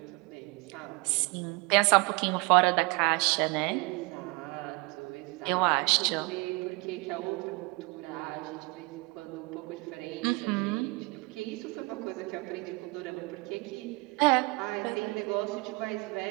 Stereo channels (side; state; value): left; quieter; 26.3 dB